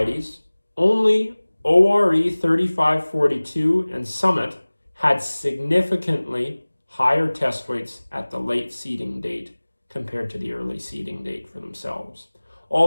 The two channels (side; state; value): both; inverted; correlation -1.00